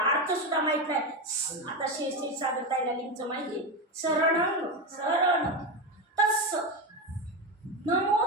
अर्थ सुद्धा माहीत नाही. आता श्री सागरताईला लिंगचं माहिती, शरणं शरण तस्स, नमो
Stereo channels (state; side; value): normal; both; correlation 0.15